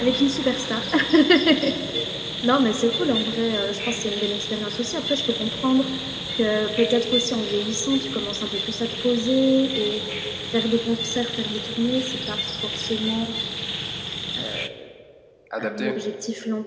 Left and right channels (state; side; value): identical; both; correlation 1.00